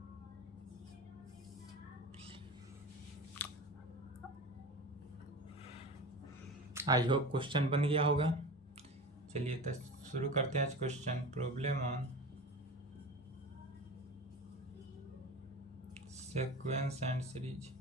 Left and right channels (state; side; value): normal; both; correlation 0.32